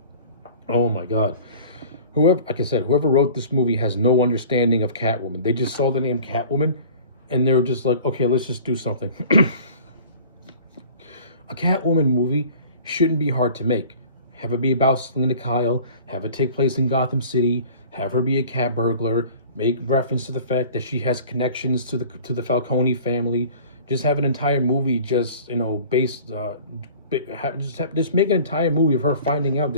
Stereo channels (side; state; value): both; inverted; correlation -0.45